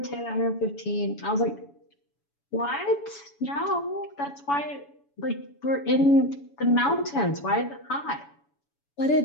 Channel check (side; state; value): right; late; 7.1 ms